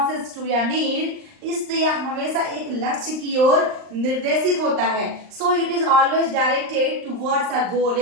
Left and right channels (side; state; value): left; late; 39 ms